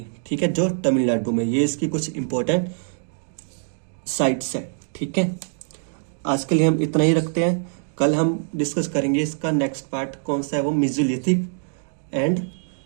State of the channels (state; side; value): silent; left; digital silence